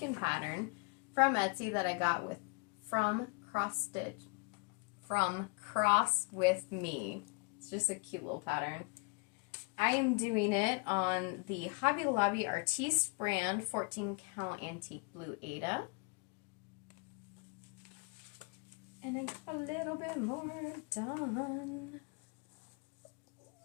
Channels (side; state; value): right; quieter; 33.1 dB